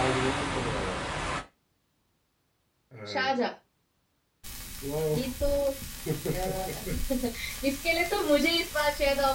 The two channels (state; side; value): identical; both; correlation 1.00